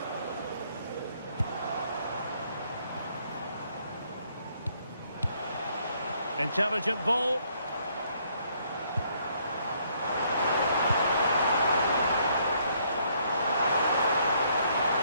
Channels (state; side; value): inverted; both; correlation -0.68